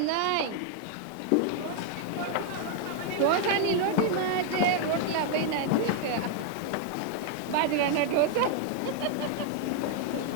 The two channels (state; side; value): different; both; correlation 0.00